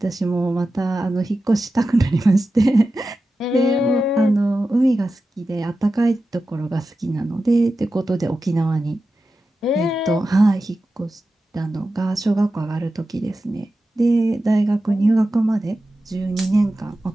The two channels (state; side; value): normal; both; correlation 0.92